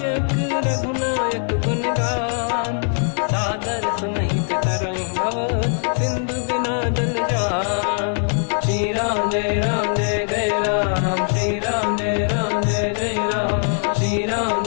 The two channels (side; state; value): right; silent; 58 dB below the other